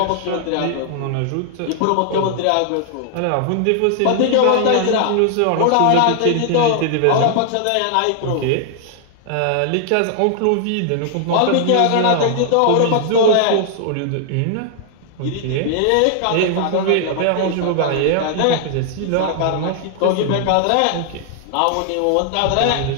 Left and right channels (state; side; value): different; both; correlation -0.01